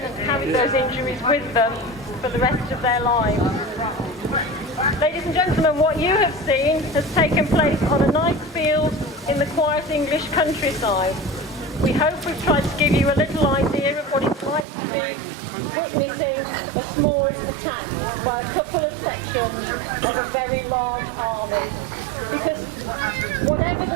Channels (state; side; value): drops out; left; at 14.7 s